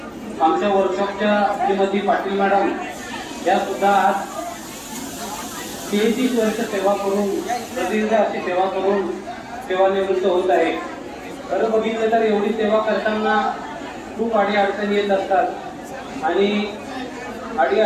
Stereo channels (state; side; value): identical; both; correlation 1.00